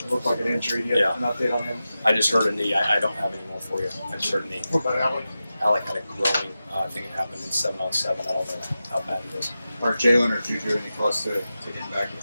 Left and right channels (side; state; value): both; inverted; correlation -0.93